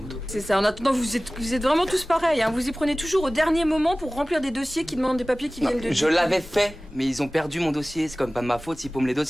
C'est ça. En attendant, vous êtes vraiment tous pareils, hein. Vous y prenez toujours au dernier moment pour remplir des dossiers qui demandent des papiers qui viennent de... Je l'avais fait, mais ils ont perdu mon dossier. C'est quand même pas de ma faute s'ils paument les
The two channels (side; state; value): both; normal; correlation 0.98